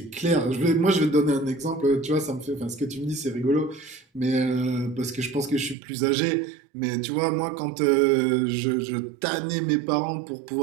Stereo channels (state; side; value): drops out; left; at 5.8 s